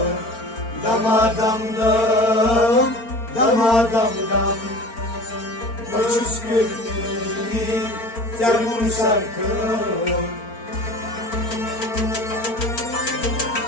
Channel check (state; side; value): late; right; 4.4 ms